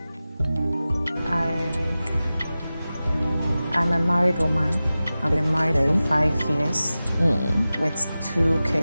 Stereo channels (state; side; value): inverted; both; correlation -0.96